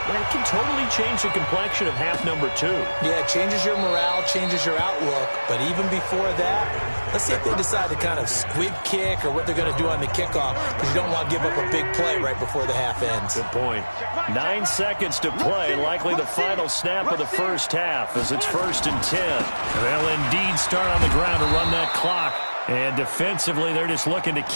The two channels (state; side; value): inverted; both; correlation -1.00